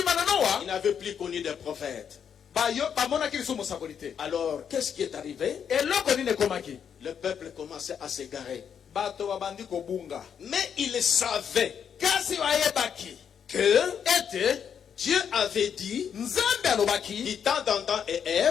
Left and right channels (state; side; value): quieter; right; 7.8 dB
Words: il n'avait plus connu de prophète. Alors qu'est-ce qui est arrivé? Le peuple commençait à s'égarer. Mais il savait que Dieu avait dit, du temps d'Adam et